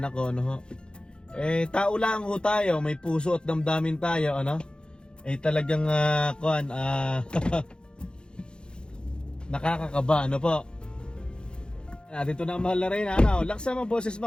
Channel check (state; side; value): late; right; 0.050 ms